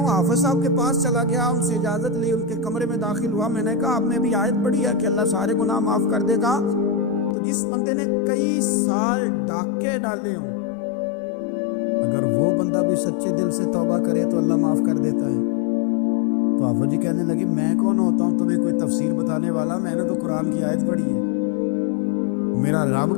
حافظ صاحب کے پاس چلا گیا, ان سے اجازت لی, ان کے کمرے میں داخل ہوا. میں نے کہا آپ نے بھی آیت پڑھی ہے کہ اللہ سارے گناہ معاف کر دے گا؟ تو جس بندے نے کئی سال ڈاکے ڈالے ہوں, اگر وہ بندہ بھی سچے دل سے توبہ کرے تو اللہ معاف کر دیتا ہے. تو حافظ جی کہنے لگے میں کون ہوتا ہوں تمہیں کوئی تفسیر بتانے والا, میں نے تو قرآن کی آیت پڑھی ہے. میرا رب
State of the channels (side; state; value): right; drops out; at 7.4 s